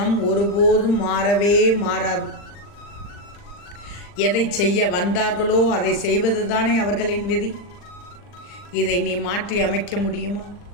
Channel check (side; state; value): right; late; 40 ms